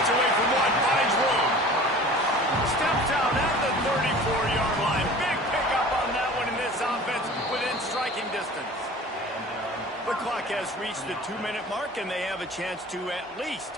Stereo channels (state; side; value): normal; both; correlation 0.43